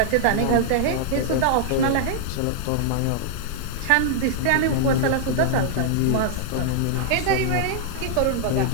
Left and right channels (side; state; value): both; different; correlation -0.01